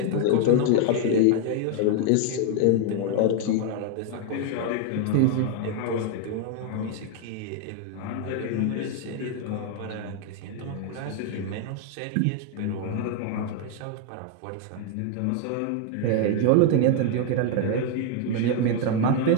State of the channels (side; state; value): both; different; correlation 0.00